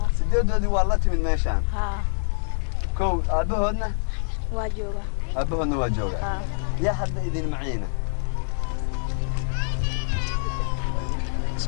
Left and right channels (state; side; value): silent; right; digital silence